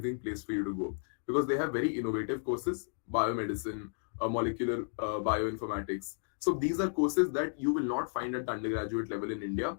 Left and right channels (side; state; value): right; silent; digital silence